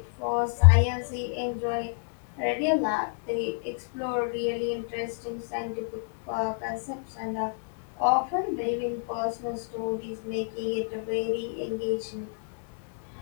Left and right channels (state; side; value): silent; right; 58 dB below the other